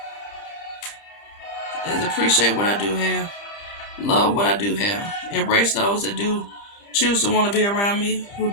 is appreciate what I do have. Love what I do have. Embrace those that do choose to want to be around me, who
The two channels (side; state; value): right; late; 30 ms